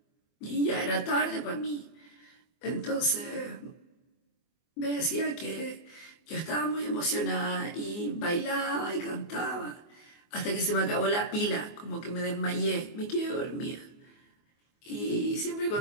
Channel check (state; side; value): late; right; 24 ms